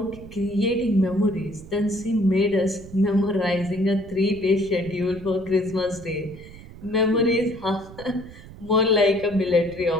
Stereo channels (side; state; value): right; noise; rumble, 17 dB below the sound